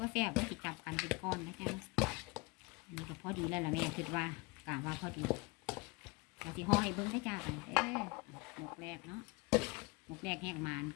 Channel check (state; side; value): quieter; right; 26.3 dB